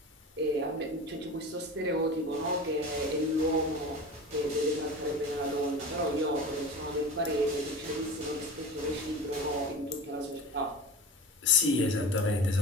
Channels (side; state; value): both; normal; correlation 0.32